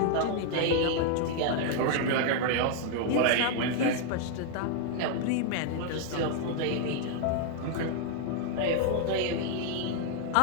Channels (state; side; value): different; both; correlation 0.00